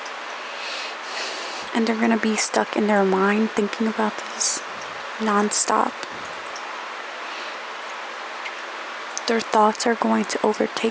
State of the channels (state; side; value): identical; both; correlation 1.00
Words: And they're going to be stuck in their mind thinking about this nonstop. Their thoughts are going to